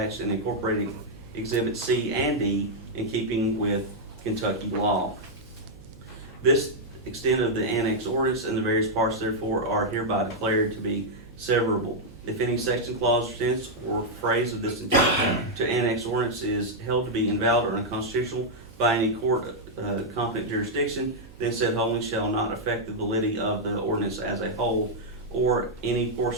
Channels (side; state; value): right; noise; hum, 21 dB below the sound